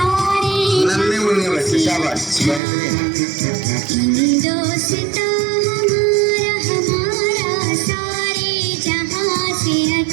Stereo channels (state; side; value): drops out; left; at 2.6 s